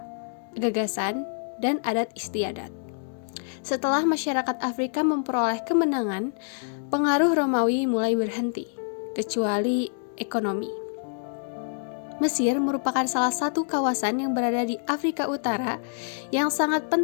gagasan, dan adat istiadat. Setelah masyarakat Afrika memperoleh kemenangan, pengaruh Romawi mulai berhenti, kecuali ekonomi. Mesir merupakan salah satu kawasan yang berada di Afrika Utara yang sangat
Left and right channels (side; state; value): right; silent; digital silence